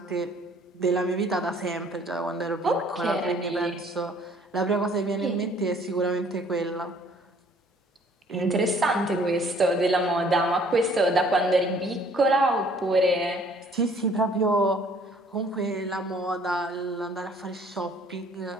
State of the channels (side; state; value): both; normal; correlation 0.58